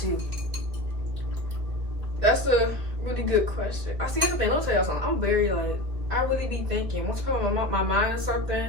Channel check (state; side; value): late; left; 2.3 ms